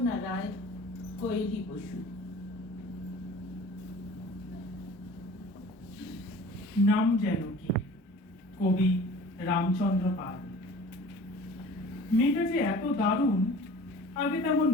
রায়, কোয়েলি বসু। নাম যেন কি? কবি রামচন্দ্র পাল। মেয়েটা যে এত দারুণ আগে তেমন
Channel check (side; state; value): both; normal; correlation 0.44